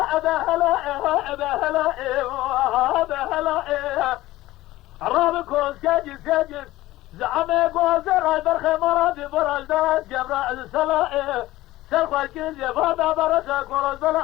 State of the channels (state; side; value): quieter; right; 16.9 dB